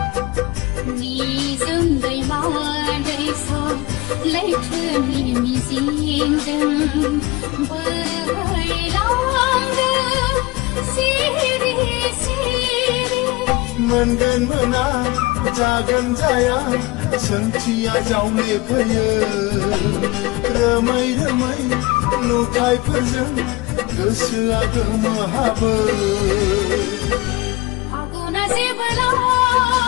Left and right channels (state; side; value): quieter; right; 22.0 dB